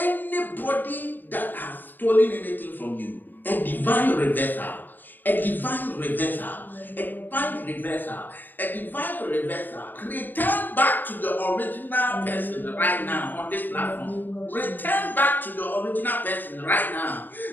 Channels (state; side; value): late; right; 0.090 ms